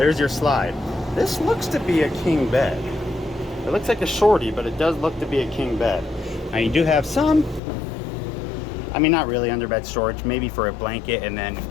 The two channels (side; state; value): right; drops out; at 7.6 s